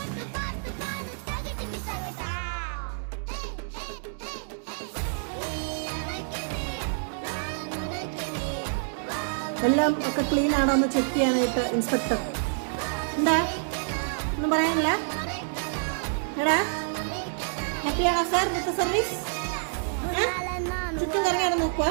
എല്ലാം ഒക്കെ ക്ലീൻ ആണോ എന്ന് ചെക്ക് ചെയ്യാനായിട്ട് ഇൻസ്പെക്ടർ. എന്താ ഒന്നും പറയാനില്ല? എടാ ഹാപ്പിയാണോ സാർ ഇന്നത്തെ സർവീസ്? ചുറ്റും കറങ്ങിയാണ് നോക്കുക.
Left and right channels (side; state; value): left; silent; digital silence